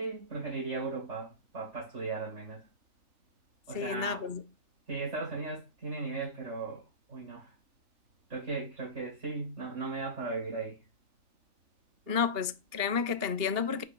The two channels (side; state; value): left; late; 3.4 ms